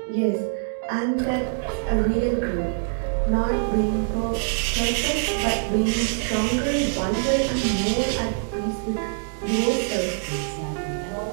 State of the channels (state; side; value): silent; left; digital silence